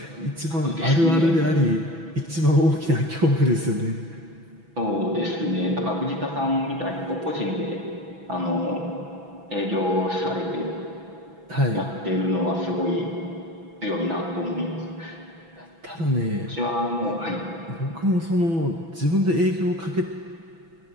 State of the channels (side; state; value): left; late; 6.0 ms